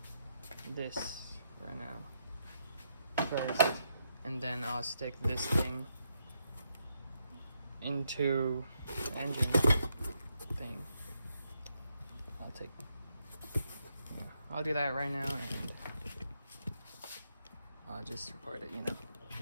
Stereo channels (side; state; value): both; inverted; correlation -0.80